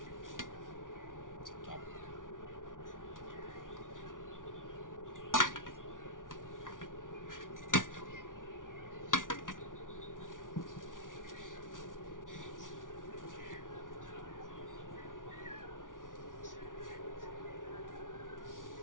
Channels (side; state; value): right; late; 0.88 ms